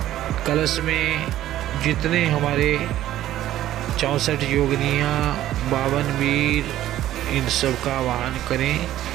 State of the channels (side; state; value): left; quieter; 13.3 dB